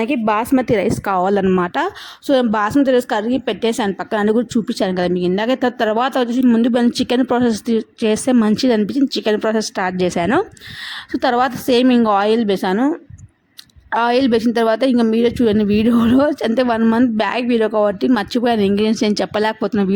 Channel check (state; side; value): identical; both; correlation 1.00